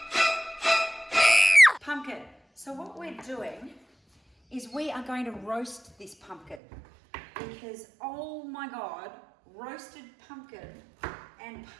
Pumpkin. So what we're doing is we are going to roast this pumpkin because, oh my God, roasted pumpkin and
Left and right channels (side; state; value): left; drops out; at 6.6 s